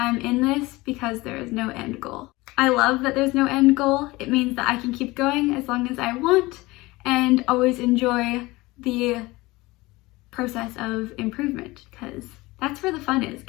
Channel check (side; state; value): right; quieter; 21.1 dB